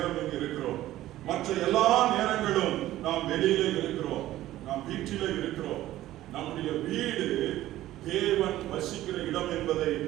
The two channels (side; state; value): left; quieter; 14.7 dB